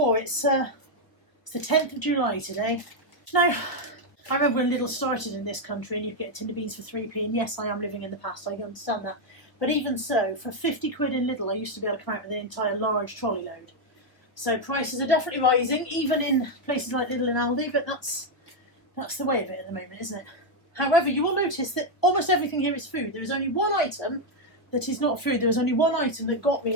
It's the 10th of July today. Now, I remember when Lidl started in this country and you'd get tin of beans for 3p, and yes, I am living in the past, I understand that. But even so, for 50 quid in Lidl, I used to be able to come out with an entire large trolley load. So prices are definitely rising, even in places like Lidl and Aldi, but that's the way of it at the moment, isn't it? However, you will notice that almost everything here is food. There is only one item that is not food. There was only one item that got me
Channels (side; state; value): right; late; 1.2 ms